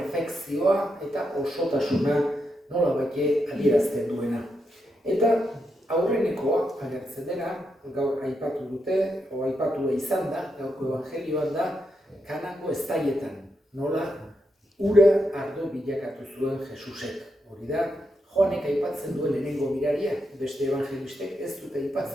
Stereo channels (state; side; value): normal; both; correlation 0.83